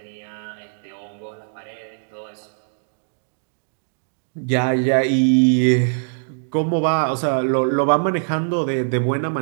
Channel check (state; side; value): silent; left; digital silence